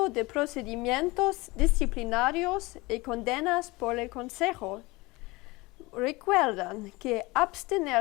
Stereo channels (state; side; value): quieter; right; 23.0 dB